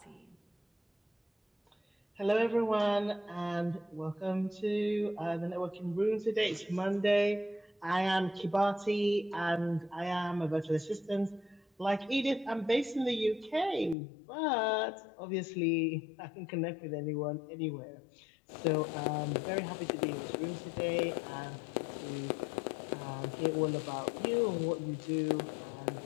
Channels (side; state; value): right; drops out; at 14.0 s